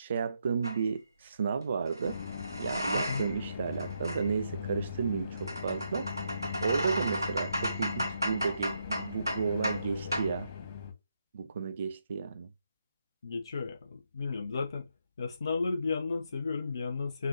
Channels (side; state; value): both; inverted; correlation -0.79